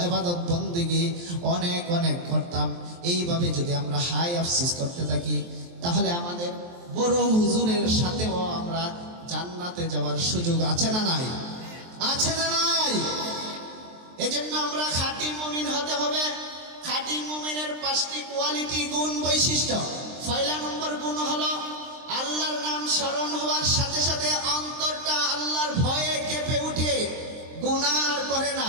ইবাদত বন্দেগী অনেক অনেক করতাম। এইভাবে যদি আমরা হাই আফসোস করতে থাকি, তাহলে আমাদের বড় হুজুরের সাথেও আমরা জান্নাতে যাওয়ার সুযোগ আছে না নাই? আছে না নাই? এজন্য আমরা খাঁটি মুমিন হতে হবে। খাঁটি মুমিনের 5টি কোয়ালিটি, গুণ, বৈশিষ্ট্য। পয়লা নম্বর গুণ হলো আল্লাহর নাম স্মরণ হওয়ার সাথে সাথে অন্তরটা আল্লাহর ভয়ে কেঁপে উঠে, গুনাহ আর করে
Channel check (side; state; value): left; late; 23 ms